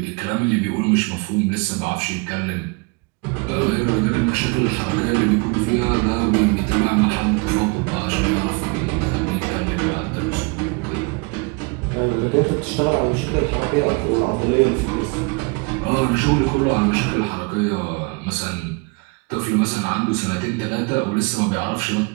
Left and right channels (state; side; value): quieter; left; 30.2 dB